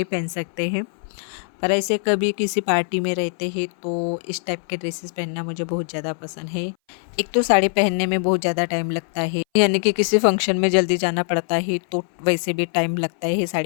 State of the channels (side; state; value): right; silent; 60 dB below the other